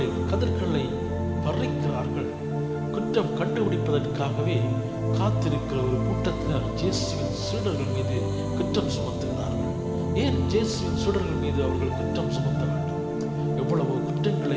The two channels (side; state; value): both; identical; correlation 1.00